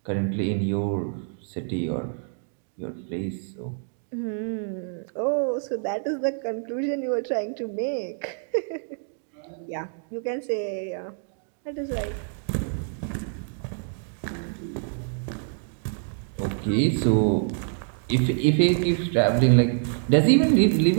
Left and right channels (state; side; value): silent; left; 61 dB below the other